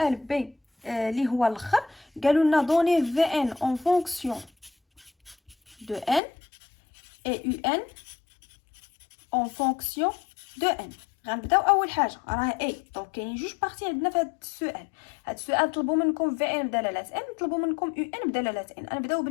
بي اللي هو الاخر. قالوا لنا دوني في ان اون فونكسيون دو ان اي يو ان اون فونكسيون دو ان. غنبداو اول حاجه راه اي. دونك كاينين جوج بارتي عندنا في هذا السؤال. هذا السؤال طلبوا منكم في ان بدلاله ان، طلبوا منكم يو ان بدلاله ان. نبداو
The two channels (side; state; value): right; drops out; at 6.2 s